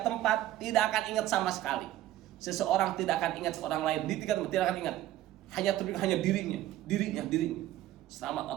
tempat tidak akan ingat sama sekali. Seseorang tidak akan ingat seorang lain. Di 3 tempat tidak akan ingat. Hanya dirinya. Selamat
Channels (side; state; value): left; quieter; 14.0 dB